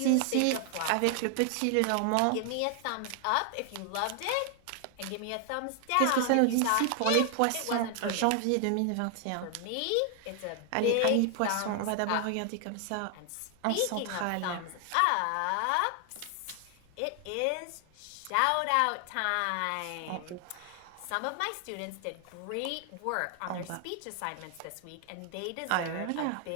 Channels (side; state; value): both; different; correlation 0.00